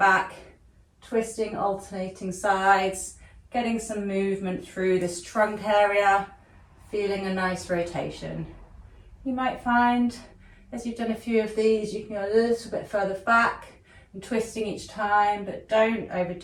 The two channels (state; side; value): identical; both; correlation 1.00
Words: twisting, alternating sides, getting some movement through this trunk area, feeling a nice rotation. You might find, as you've done a few of these, you can go a little bit further back and twisting each time, but don't